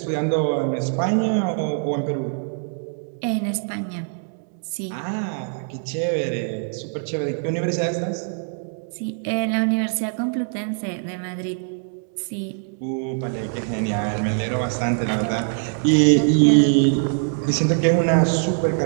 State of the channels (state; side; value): silent; left; 63 dB below the other